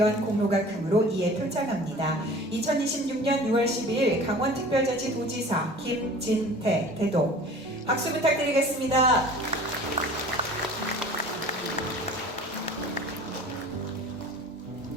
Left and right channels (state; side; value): normal; both; correlation 0.44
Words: 공로가 크므로 이에 표창합니다. 2026년 6월 12일 강원특별자치 도지사 김진태 대동 박수 부탁드리겠습니다.